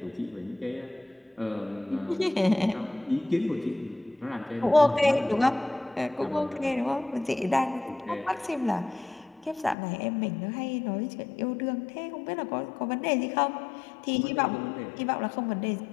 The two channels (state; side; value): drops out; right; at 9.8 s